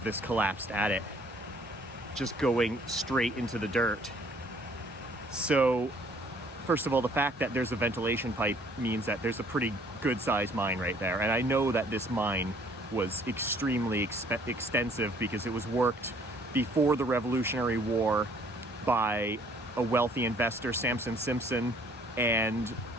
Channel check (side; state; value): both; normal; correlation 0.60